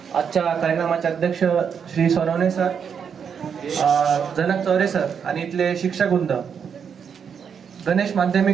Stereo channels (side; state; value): left; quieter; 7.1 dB